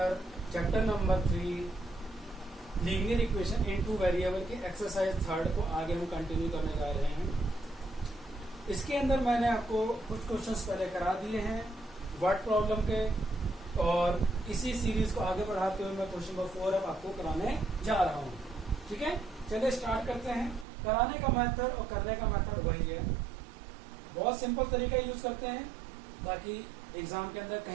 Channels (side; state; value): left; drops out; at 20.7 s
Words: chapter number 3 linear equation in two variable के एक्सरसाइज 3 को आगे हम कंटिन्यू करने जा रहे हैं। इसके अंदर मैंने आपको कुछ क्वेश्चंस पहले करा दिए हैं वर्ड प्रॉब्लम के, और इसी सीरीज को आगे बढ़ाते हुए मैं क्वेश्चन नंबर 4 अब आपको कराने जा रहा हूँ। ठीक है, चलिए स्टार्ट करते हैं। कराने का मेथड और करने का मेथड वही है, बहुत सिंपल तरीका यूज करते हैं ताकि एग्जाम के अंदर